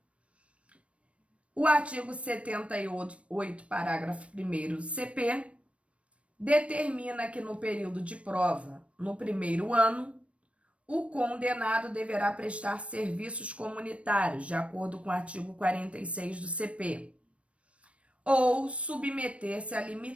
O artigo 78, parágrafo 1º do CP, determina que no período de prova, no primeiro ano, o condenado deverá prestar serviços comunitários, de acordo com o artigo 46 do CP, ou submeter-se à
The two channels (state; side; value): late; left; 0.062 ms